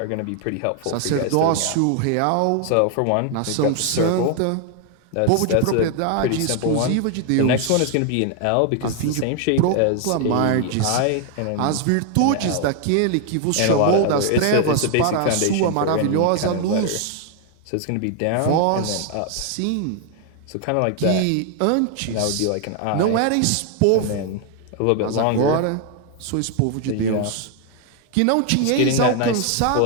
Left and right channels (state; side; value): different; both; correlation 0.00